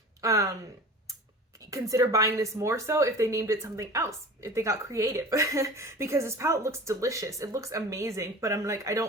consider buying this more so if they named it something else, if they got creative. Because this palette looks delicious, it looks amazing, but I'm like, I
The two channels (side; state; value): both; normal; correlation 0.38